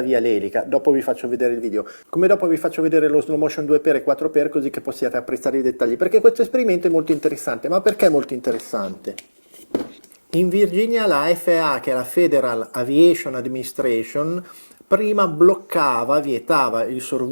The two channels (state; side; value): inverted; both; correlation -1.00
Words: via l'elica. Dopo vi faccio vedere il video, come dopo vi faccio vedere lo slow motion 2x e 4x, così che possiate apprezzare i dettagli, perché questo esperimento è molto interessante. Ma perché è molto interessante? In Virginia la FAA, che è la Federal Aviation Administration, prima vietava i